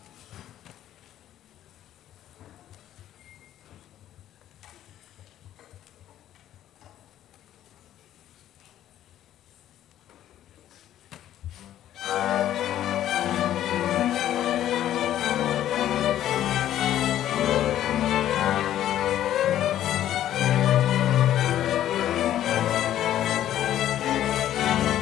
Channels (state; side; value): quieter; right; 12.0 dB